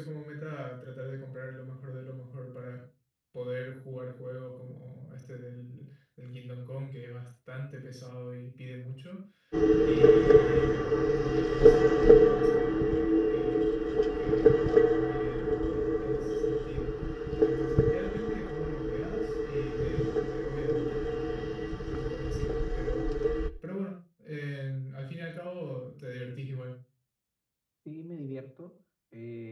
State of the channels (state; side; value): identical; both; correlation 1.00